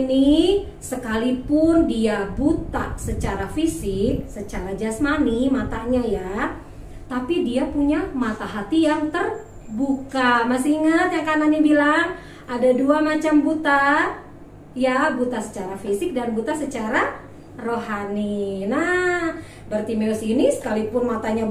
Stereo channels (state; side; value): identical; both; correlation 1.00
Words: sekalipun dia buta secara fisik, secara jasmani matanya ya, tapi dia punya mata hati yang terbuka. Masih ingat yang kanannya bilang ada dua macam buta? Ya, buta secara fisik dan buta secara rohani. Nah, Bartimeus ini sekalipun matanya